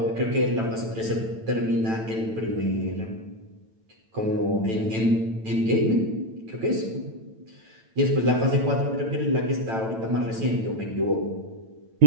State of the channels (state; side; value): late; left; 9.0 ms